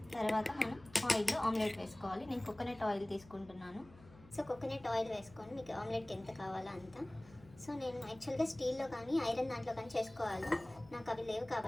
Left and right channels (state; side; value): noise; left; hum, 22 dB below the sound